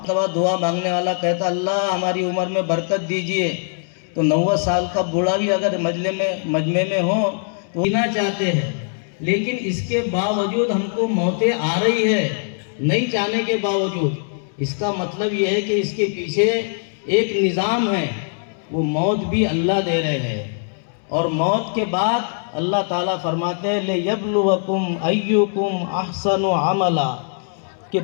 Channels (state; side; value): silent; right; 65 dB below the other